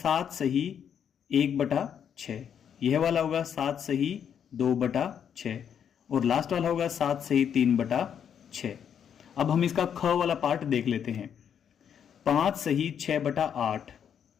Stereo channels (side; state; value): right; quieter; 8.3 dB